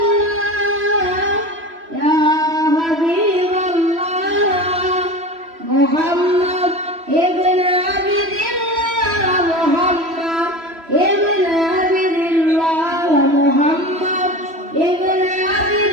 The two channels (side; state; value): left; late; 3.0 ms